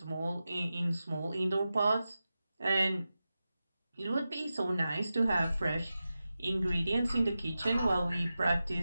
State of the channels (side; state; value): both; inverted; correlation -0.93